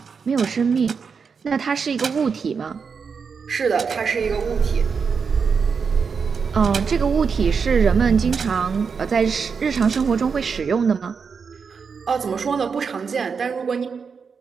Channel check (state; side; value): quieter; left; 5.8 dB